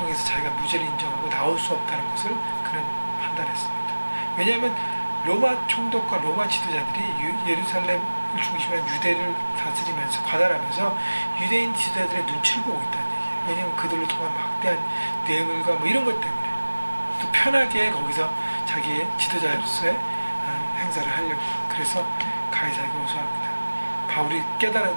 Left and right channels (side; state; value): both; inverted; correlation -1.00